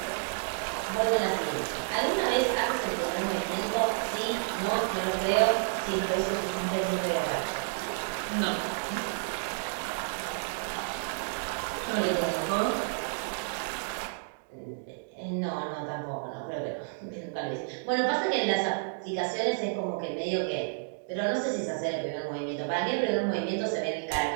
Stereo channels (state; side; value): silent; left; digital silence